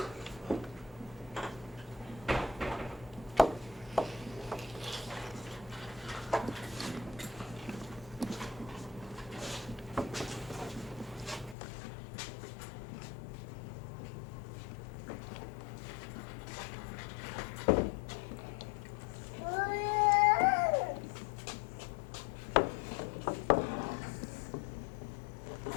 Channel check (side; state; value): right; drops out; at 11.6 s